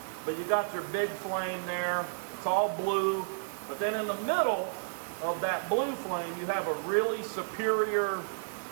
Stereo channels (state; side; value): silent; left; digital silence